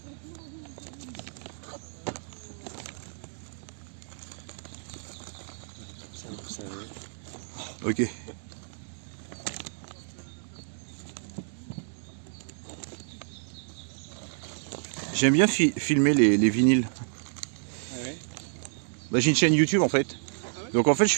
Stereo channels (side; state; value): left; silent; 58 dB below the other